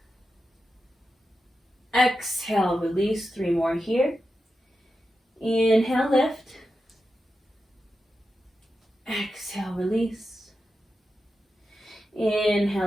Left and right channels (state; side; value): normal; both; correlation 0.90